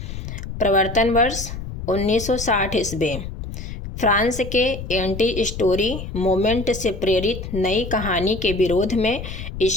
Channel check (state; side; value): noise; left; rumble, 8 dB below the sound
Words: प्रवर्तन वर्ष 1960 ईस्वी। फ्रांस के एंटी स्टोरी मूवमेंट से प्रेरित नई कहानी के विरोध में